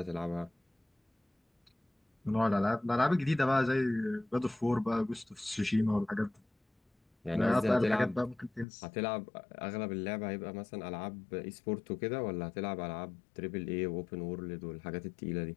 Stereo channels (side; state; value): right; drops out; at 8.7 s